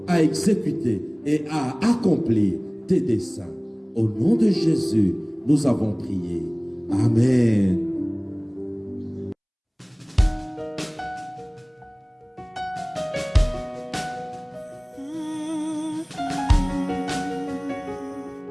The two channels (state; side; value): identical; both; correlation 1.00